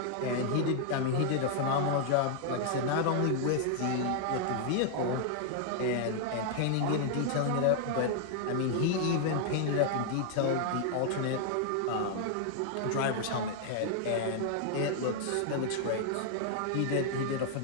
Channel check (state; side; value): different; both; correlation -0.01